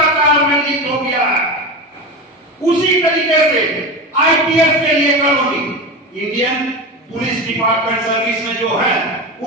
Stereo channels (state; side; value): normal; both; correlation 0.23